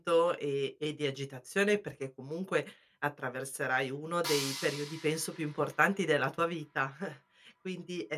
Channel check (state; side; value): identical; both; correlation 1.00